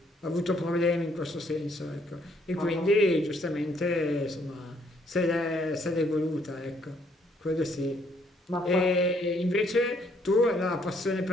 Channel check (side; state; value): both; normal; correlation 0.68